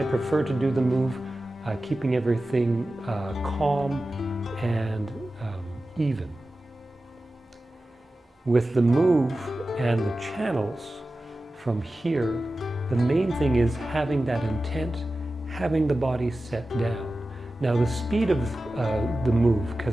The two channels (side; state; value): both; normal; correlation 0.94